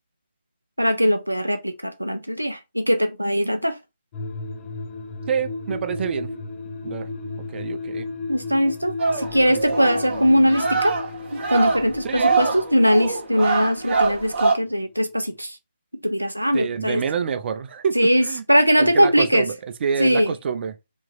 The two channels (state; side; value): inverted; both; correlation -0.91